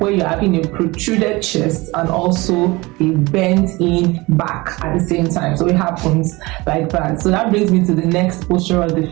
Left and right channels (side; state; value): left; quieter; 22.7 dB